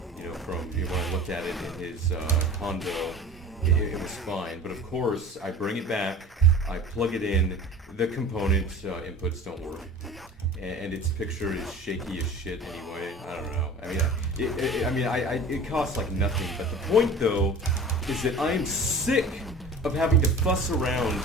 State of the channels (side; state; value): both; normal; correlation 0.40